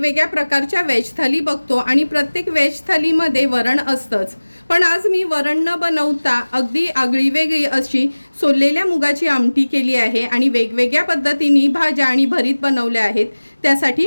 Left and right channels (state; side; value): inverted; both; correlation -1.00